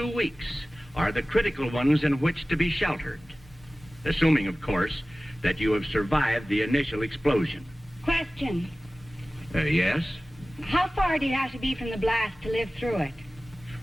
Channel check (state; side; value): normal; both; correlation 0.97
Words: weeks are the critical ones in which to be sheltered, assuming, of course, that you have survived the initial explosion. Question. Yes? How far do you have to be from the blast to live through it?